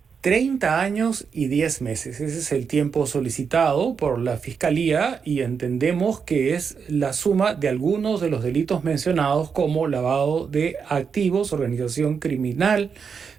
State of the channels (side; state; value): left; quieter; 6.2 dB